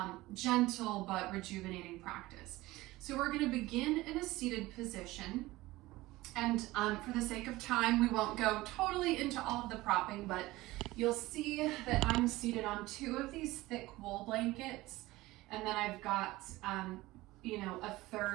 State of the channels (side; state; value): left; quieter; 18.8 dB